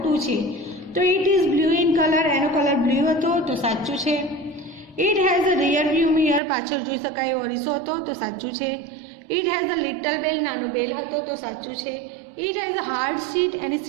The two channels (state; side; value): drops out; left; at 6.4 s